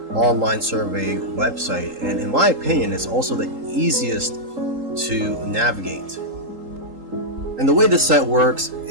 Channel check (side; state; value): left; late; 3.8 ms